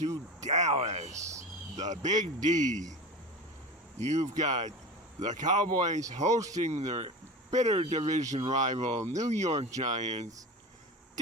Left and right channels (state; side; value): normal; both; correlation 0.30